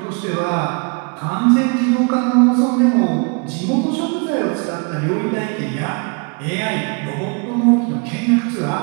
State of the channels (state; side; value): quieter; left; 34.4 dB